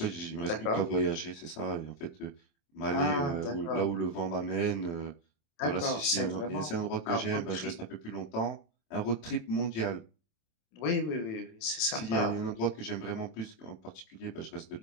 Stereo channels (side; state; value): right; late; 27 ms